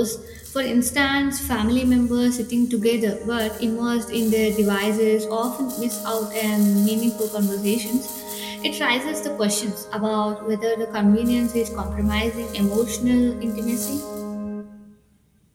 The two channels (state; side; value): identical; both; correlation 1.00